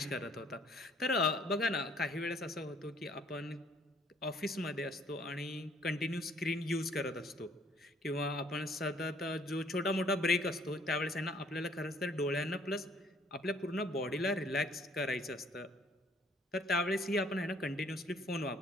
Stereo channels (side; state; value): both; normal; correlation 0.61